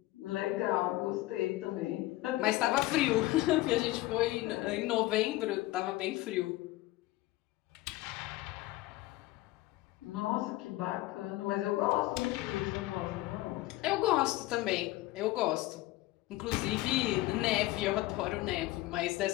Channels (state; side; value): quieter; right; 18.2 dB